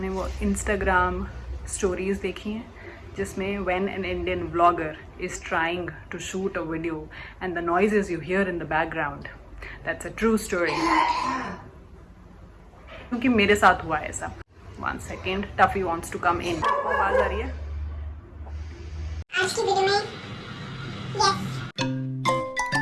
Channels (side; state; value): both; identical; correlation 1.00